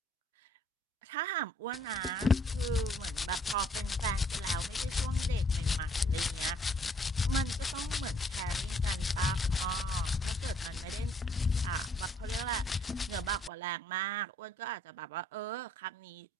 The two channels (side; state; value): both; normal; correlation 0.64